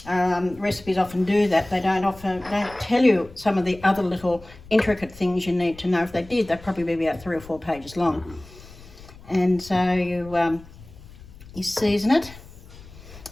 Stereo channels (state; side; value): noise; left; rumble, 20 dB below the sound